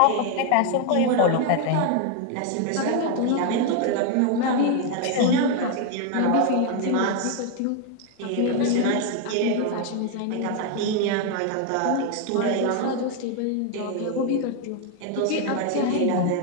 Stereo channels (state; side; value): different; both; correlation 0.00